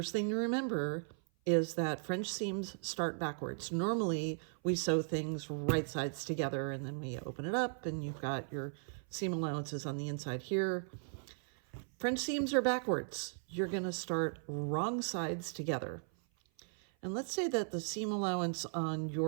thing to remember is that French seams start backwards. Normally, we sew things right sides together and then we open it up and you've got your seam allowances on the inside here. French seams are backwards. You're going to start wrong sides together. And let's say that the seam allowance on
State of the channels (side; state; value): left; silent; 53 dB below the other